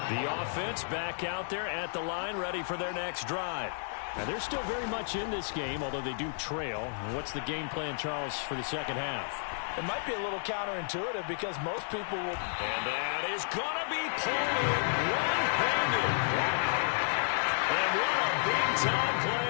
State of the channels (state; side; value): silent; right; 56 dB below the other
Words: The offense back out there at the line, ready for their next drive. Now, they're still very much in this game, although they do trail. What's the game plan, Charles, for the second half? It might be a little counterintuitive because most people will... And that is going to be pulled in one-handed. And what a big-time play